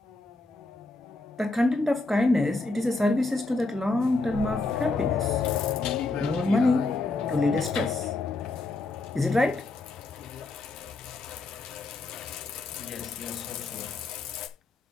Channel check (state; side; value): quieter; right; 3.3 dB